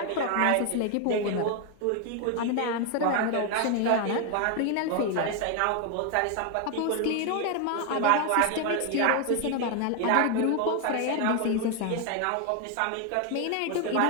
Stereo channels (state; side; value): different; both; correlation 0.01